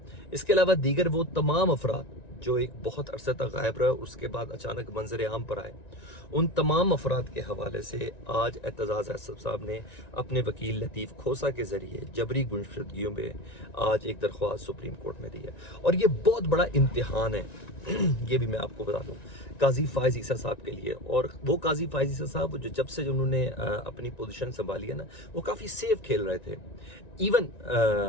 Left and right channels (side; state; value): right; late; 1.9 ms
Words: इसके अलावा दीगर वो तमाम अफराद जो एक बहुत अरसे तक गायब रहे, उसके बाद अचानक मंजर आम पर आए, उन तमाम अफराद के हवाले से आज एतजाज़ एहसन साहब ने अपने वकील लतीफ़ खोसा के ज़रिए जबरी गुमशुदगियों में आज एक दरख्वास्त सुप्रीम कोर्ट में दी है। और ये बहुत बड़ा इम्तिहान है ये भी मैं आपको बता दूं काजी फायज़ ईसा साहब के लिए। और वो काजी फायज़ ईसा साहब जो जब से उन्होंने अपनी पोजीशन संभाली है ना, वो काफ़ी सेफ खेल रहे थे। इवन